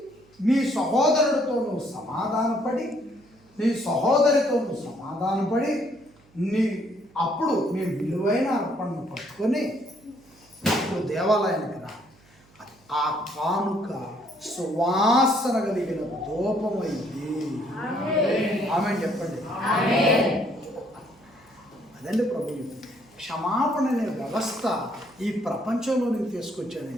నీ సహోదరుడితో నువ్వు సమాధానపడి, నీ సహోదరితో నువ్వు సమాధానపడి, అప్పుడు నీ విలువైన అర్పణను పట్టుకొని అప్పుడు దేవాలయానికి రా. ఆ కానుక సువాసన కలిగిన ధూపమైంది. ఆమె చెప్పండి. అదండి ప్రభు. క్షమాపణ అనే వ్యవస్థ ఈ ప్రపంచంలోనికి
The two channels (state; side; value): noise; right; hum, 30 dB below the sound